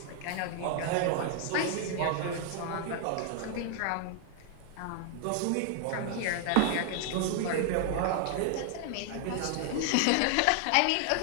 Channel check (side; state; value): both; different; correlation 0.00